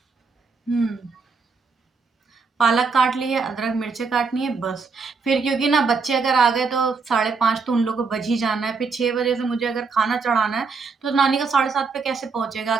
पालक काट लिए, अदरक मिर्चे काटनी है बस। फिर क्योंकि ना बच्चे अगर आ गए तो 5:30 तो उन लोगों को बज ही जाना है, फिर 6 बजे से मुझे अगर खाना चढ़ाना है तो नानी का 7:30 पे कैसे पहुंचेगा,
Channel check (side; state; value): left; quieter; 4.8 dB